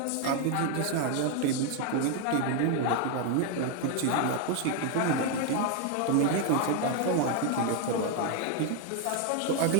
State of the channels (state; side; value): different; both; correlation 0.01